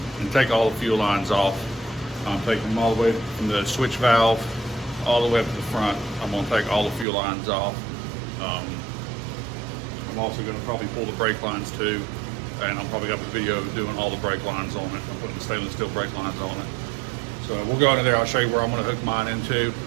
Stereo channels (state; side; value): drops out; left; at 7.1 s